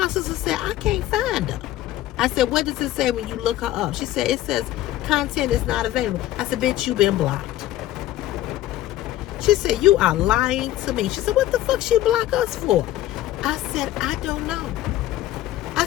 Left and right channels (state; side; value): quieter; right; 14.2 dB